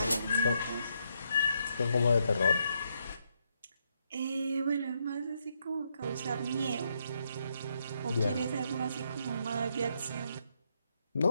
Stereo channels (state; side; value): inverted; both; correlation -0.77